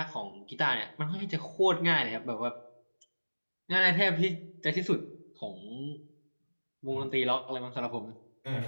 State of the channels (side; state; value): both; inverted; correlation -1.00